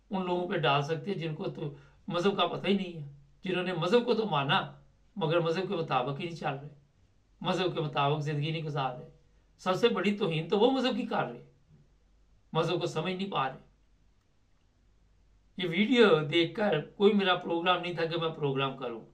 उन लोगों पे डाल सकते हैं जिनको तो मज़हब का पता ही नहीं है, जिन्होंने मज़हब को तो माना मगर मज़हब के मुताबिक ही नहीं चल रहे, मज़हब के मुताबिक ज़िंदगी नहीं गुजार रहे। सबसे बड़ी तौहीन तो वो मज़हब की कर रहे, मज़हब को समझ नहीं पा रहे। ये वीडियो देखकर कोई मेरा प्रोग्राम नहीं था कि मैं प्रोग्राम करूं।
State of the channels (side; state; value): both; identical; correlation 1.00